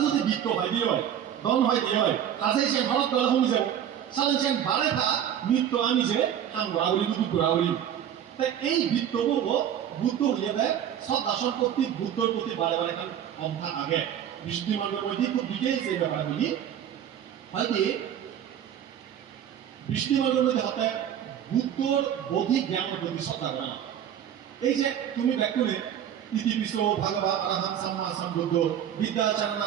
যদি বৃত্ত হয় দিয়ে হয় দন হয় দিয়ে হয় কাজে সে ঘরত গলে হমি যাব সালেন সে বাড়ে থা নৃত্য আমি যে হাম ঘোরাঘুরি দুঃখ ঘোরাঘুরি তাই এই বৃত্ত করব বুদ্ধ হইলে দেয় শ্রদ্ধা সম্পত্তি বুদ্ধর প্রতি বারে বারে খান অন্থা আগে বিশুদ্ধি মার্গের মধ্যে খুব ডিটেইলস এই ব্যাপারগুলি হয়তো বিশুদ্ধি মার্গের মধ্যে হতে বুদ্ধর বৌদ্ধিক জ্ঞানের প্রতি শ্রদ্ধা করে না এই যে তুমি ব্যাকুলে ইতিবিশ্ব ভাগবত আরাহাম সাম্মা সম্বুদ্ধ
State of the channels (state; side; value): quieter; left; 9.9 dB